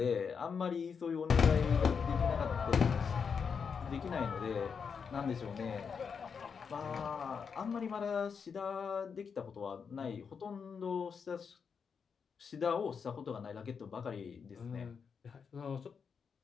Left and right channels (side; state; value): right; quieter; 6.2 dB